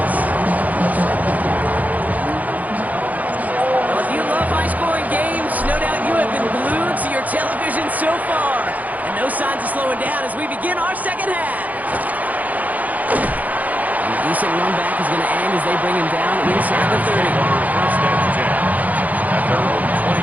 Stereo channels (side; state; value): left; late; 0.079 ms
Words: Well, if you love high-scoring games, no doubt you have been glued to your television so far. And no signs of slowing down as we begin our second half. A decent run back is going to end as they bring him down inside the 30. First and 10 at their own